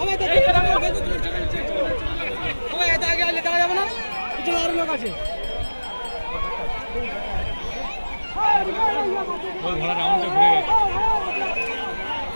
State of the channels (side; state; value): both; inverted; correlation -1.00